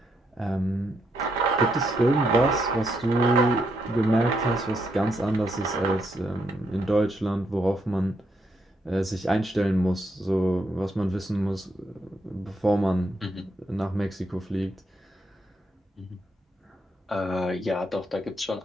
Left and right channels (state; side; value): normal; both; correlation 0.78